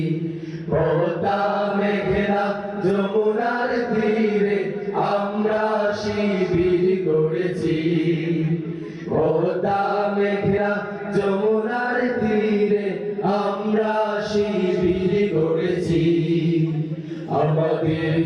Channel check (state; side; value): identical; both; correlation 1.00